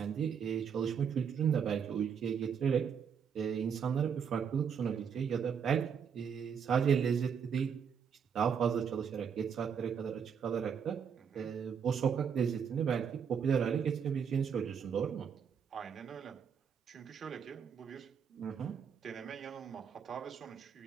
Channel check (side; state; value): left; quieter; 7.2 dB